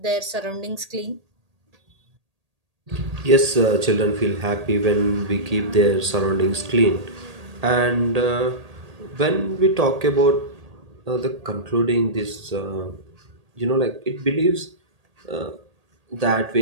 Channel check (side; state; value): left; late; 1.8 ms